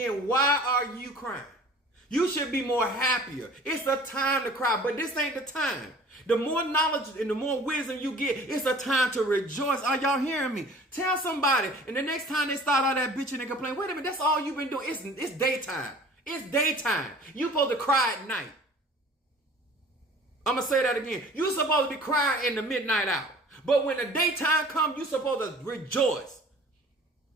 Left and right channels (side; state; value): both; normal; correlation 0.47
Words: why are you crying? You should be more happier. It's the time to cry, but this ain't the time. The more knowledge and the more wisdom you get, it's a time to rejoice. Are y'all hearing me? Tell somebody, and the next time they start all that bitching and complaining, wait a minute, that's all you've been doing. It's daytime. It's daytime. You supposed to cry at night. I'm going to say that again. You're supposed to be crying in the midnight hour. But when the daytime comes, you're supposed to rejoice.